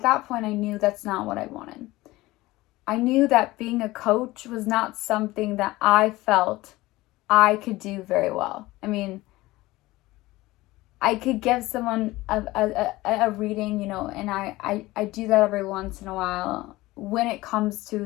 that point I knew that's not what I wanted. I knew that being a coach was not something that I felt I could do very well. I mean, I could give someone a reading, and I do that every once in a while when it comes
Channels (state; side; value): quieter; right; 19.0 dB